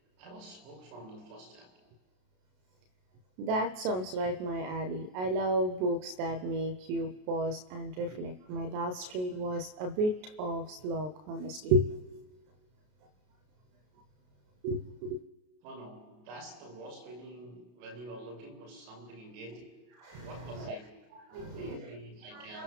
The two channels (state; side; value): late; left; 33 ms